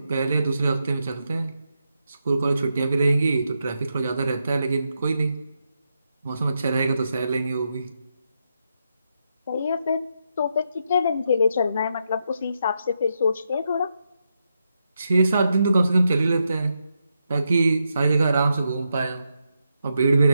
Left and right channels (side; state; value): both; inverted; correlation -0.83